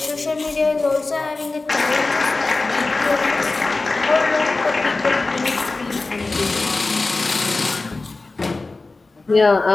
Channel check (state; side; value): quieter; right; 3.5 dB